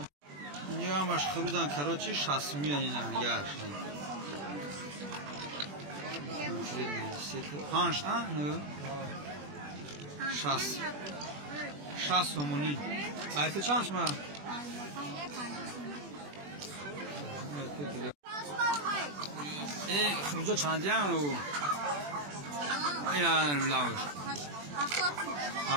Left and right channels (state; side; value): late; left; 21 ms